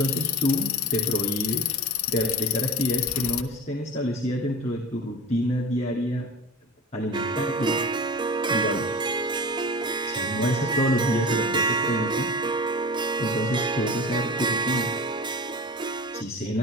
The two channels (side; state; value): both; normal; correlation 0.33